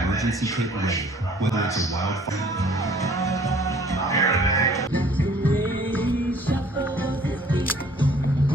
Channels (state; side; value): normal; both; correlation 0.55